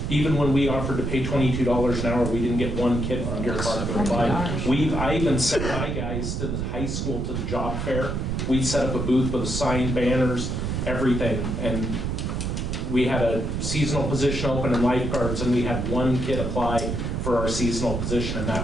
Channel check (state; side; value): noise; right; rumble, 2 dB below the sound